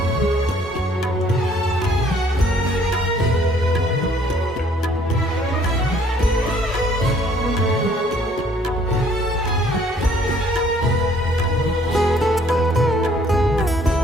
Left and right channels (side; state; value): both; normal; correlation 0.61